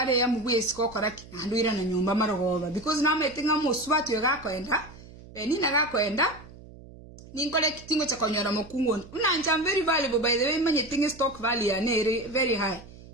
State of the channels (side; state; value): right; noise; hum, 19 dB below the sound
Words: ya mubwesi kokoraki nandwira na nyumba marogoba because na metinga muswatu yagakwenda benina gakwenda ninkole kitingo cha konyora mukungu unanja very valuable by the way manye tinga stock value ya nere very high